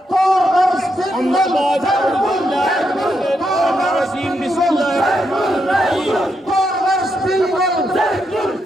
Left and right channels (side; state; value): both; normal; correlation 0.81